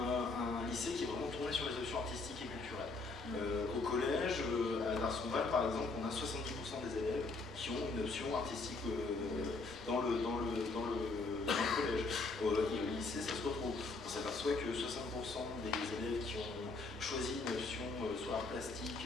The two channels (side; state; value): right; quieter; 3.7 dB